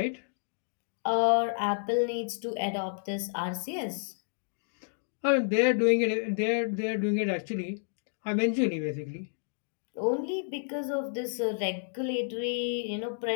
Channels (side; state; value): right; silent; digital silence